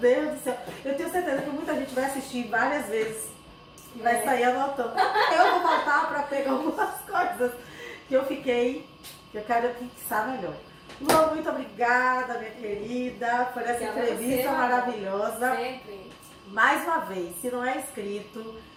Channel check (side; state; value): both; identical; correlation 1.00